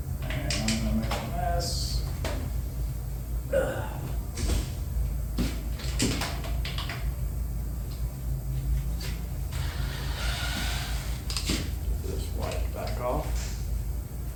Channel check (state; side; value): identical; both; correlation 1.00